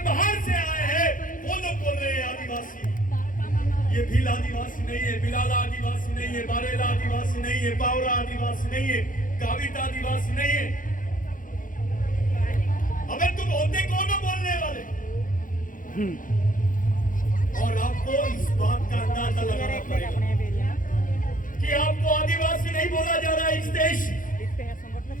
बाहर से आए हैं वो लोग बोल रहे हैं आदिवासी। ये भील आदिवासी नहीं है, बिलाला आदिवासी नहीं है, बारेला आदिवासी नहीं है, बावरा आदिवासी नहीं है, गावित आदिवासी नहीं है। अबे तुम होते कौन हो बोलने वाले? और आपको इस बात का अंदाजा लगाना पड़ेगा कि आपको आदिवासी नहीं बोला जा रहा है। इस देश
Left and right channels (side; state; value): right; late; 0.39 ms